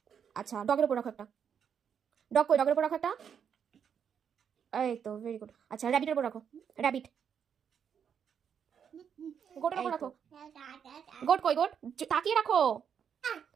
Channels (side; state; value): left; quieter; 7.7 dB